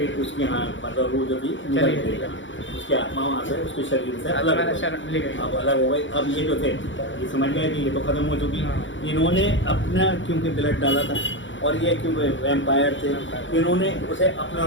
उसकी हाँ मतलब वो जो थी निकल गई, उसकी आत्मा वहाँ से उसके शरीर से अलग हो गई। अब ये जो थे ये समझ गए कि ये तो खत्म हो चुकी। इन्होंने अपना क्योंकि ब्लड डाला था और ये क्योंकि वैम्पायर थे, इन्होंने उसे अपना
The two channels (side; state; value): right; late; 0.55 ms